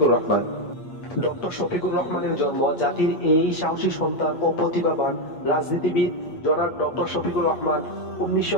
রহমান। ডক্টর শফিকুর রহমানের জন্ম জাতির এই সাহসী সন্তান ও প্রতিভাবান রাজনীতিবিদ জনাব ডক্টর শফিকুর রহমান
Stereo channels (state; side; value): late; right; 8.4 ms